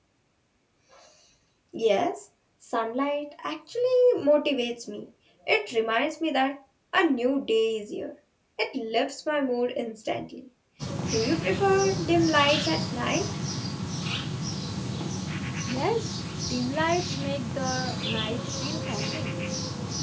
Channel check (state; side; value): identical; both; correlation 1.00